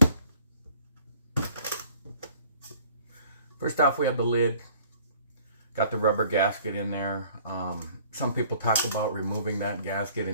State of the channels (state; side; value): inverted; both; correlation -0.55